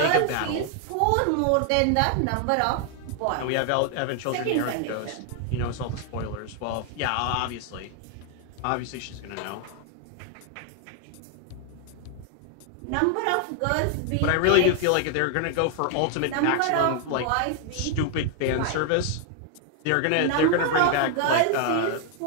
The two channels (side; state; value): both; different; correlation 0.00